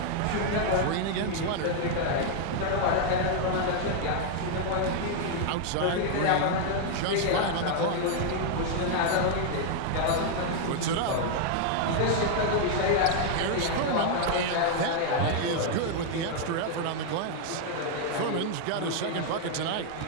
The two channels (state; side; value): different; both; correlation 0.00